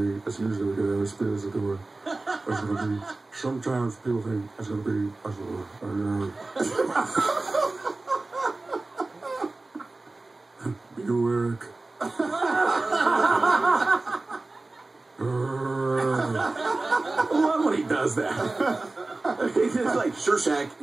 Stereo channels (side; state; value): left; quieter; 3.2 dB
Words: That's usually what the spirits are doing. That's gonna be. Sometimes people think that's gonna be. Buick. I love when he does that. He's just like, sure, Shaq,